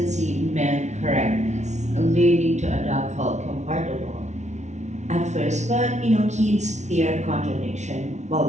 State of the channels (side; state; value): left; late; 0.33 ms